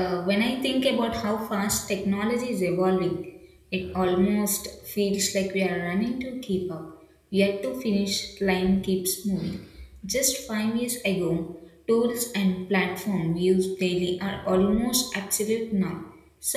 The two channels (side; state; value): both; identical; correlation 1.00